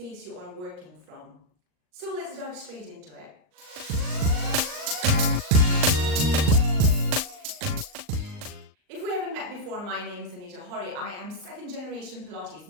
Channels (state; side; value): late; left; 39 ms